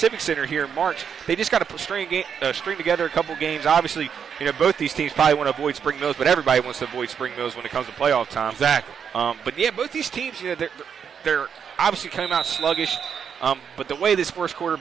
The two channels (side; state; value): left; quieter; 7.4 dB